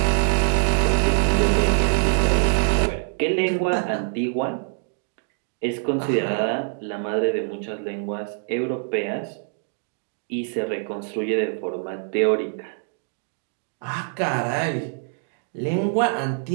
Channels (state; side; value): silent; left; digital silence